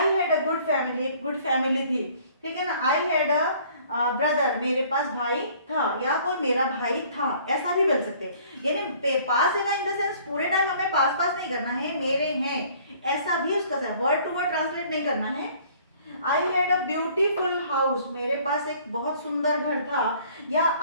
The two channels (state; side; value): inverted; both; correlation -0.56